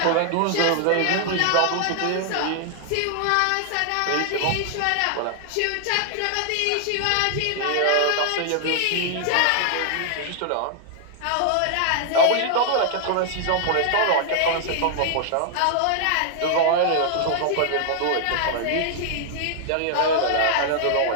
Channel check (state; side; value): different; both; correlation 0.00